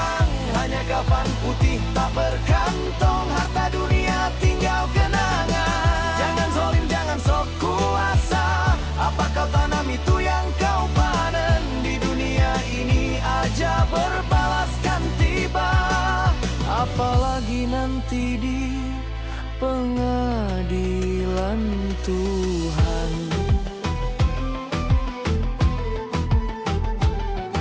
Hanya kafan putih tak berkantong, harta dunia tinggal kenangan. Jangan zalim, jangan sok kuasa, apa kau tanam itu yang kau panen. Di dunia ini aja berbalaskan tiba, apalagi nanti di pengadilan Tuhan.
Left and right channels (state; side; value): identical; both; correlation 1.00